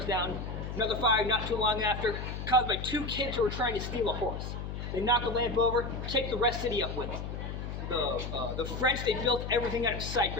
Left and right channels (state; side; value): noise; left; hum, 6 dB below the sound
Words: down. Another fire not too long after, caused by two kids who were trying to steal a horse. They knock the lamp over, take the rest city up with them. The French, they built everything out of